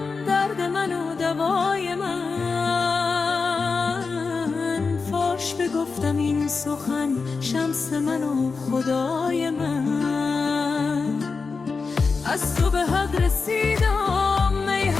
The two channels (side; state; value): right; quieter; 4.6 dB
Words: درد من و دوای من. فاش بگفتم این سخن، شمس من و خدای من. از تو به حق رسیدم ای